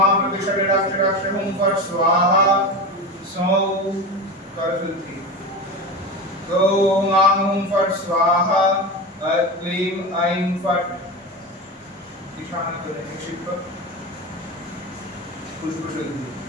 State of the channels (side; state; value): both; normal; correlation 0.25